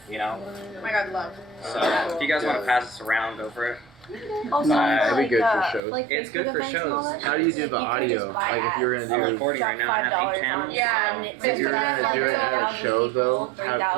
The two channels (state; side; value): drops out; left; at 5.8 s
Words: Oh my God, love. So if you guys want to pass this around, go for it. Also, it'd be good for shows. It's good for shows. How do you do the audio? Like if you're gonna do I'm recording right now, I have 8 channels. Yeah. If you're gonna do it at a show though,